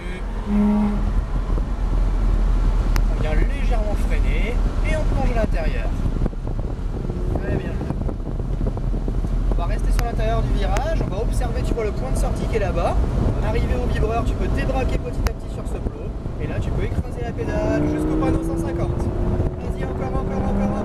On vient légèrement freiner et on plonge à l'intérieur. Très bien. On va rester sur l'intérieur du virage, on va observer, tu vois le point de sortie qui est là-bas. Arrivé au vibreur, tu peux débraquer petit à petit sur ce plot. Et là, tu peux écraser la pédale jusqu'au panneau 150. Vas-y, encore,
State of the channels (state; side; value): identical; both; correlation 1.00